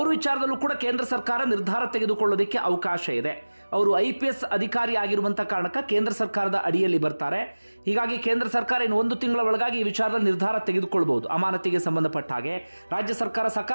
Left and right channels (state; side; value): inverted; both; correlation -1.00